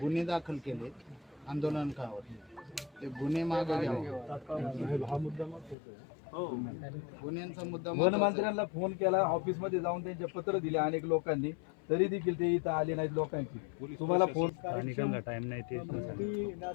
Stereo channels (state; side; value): drops out; right; at 5.8 s